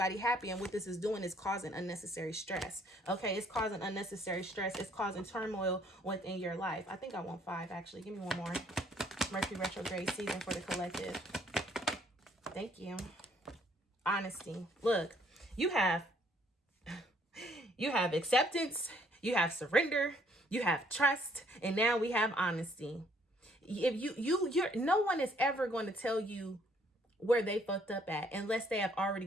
happy, and what this is doing is causing unnecessary stress. Okay, it's causing unnecessary stress. It's causing turmoil within your life. I think I want 5, actually. Give me one more. Mercury retrograde season for the collective. Thank you. Honesty. Look, you have acceptance, you have surrender, you have trust, and now we have honesty. If you're no one is ever going to tell you where they fucked up at unless they have already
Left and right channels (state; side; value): normal; both; correlation 0.64